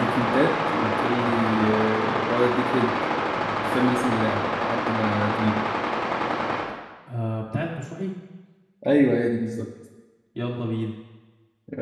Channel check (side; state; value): both; identical; correlation 1.00